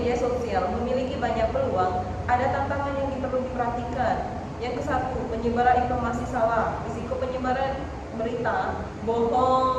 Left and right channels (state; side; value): identical; both; correlation 1.00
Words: sosial memiliki banyak peluang, ada tantangan yang perlu diperhatikan. Yang ke-1, penyebaran informasi salah. Risiko penyebaran berita